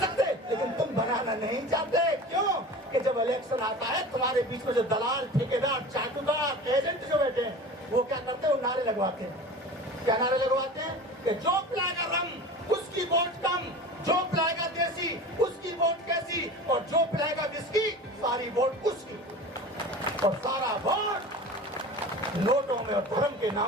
लेकिन तुम बनाना नहीं चाहते। क्यों? कि जब इलेक्शन आता है तुम्हारे बीच में जो दलाल, ठेकेदार, चाटुकार, एजेंट जो बैठे हैं, वो क्या करते हैं, वो नारे लगवाते हैं। क्या नारे लगवाते हैं कि जो पिलाएगा रम उसकी वोट कम, जो पिलाएगा देसी उसकी वोट कैसी, और जो पिलाएगा विस्की सारी वोट उसकी, और सारा वोट नोटों में और धर्म के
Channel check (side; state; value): both; normal; correlation 0.36